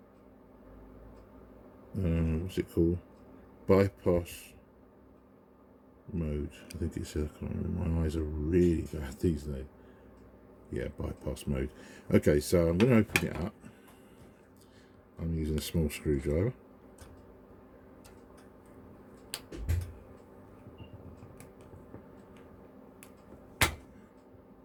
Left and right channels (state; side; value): identical; both; correlation 1.00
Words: What's it called? Bypass mode. I think it says, I can't remember. My eyes are really bad these days. Yeah, bypass mode. Okay, so I'm going to open it up. I'm using a small screwdriver.